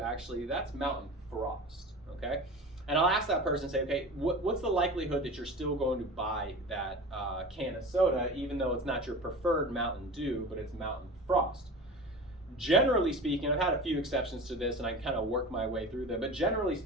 actually, that's Mountain Frost, okay? And I'll ask that person, say, okay, what's the likelihood that you're still going to buy that can of soda, even though it's not your preferred Mountain Dew, but it's Mountain Frost? Generally speaking, I've had a few exceptions to this and I kind of work my way through them, but generally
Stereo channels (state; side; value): normal; both; correlation 0.33